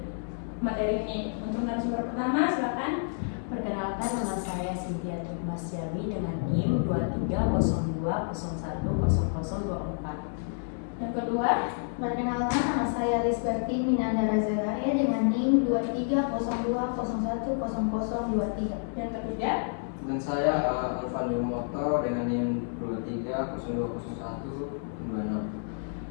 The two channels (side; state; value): right; silent; 58 dB below the other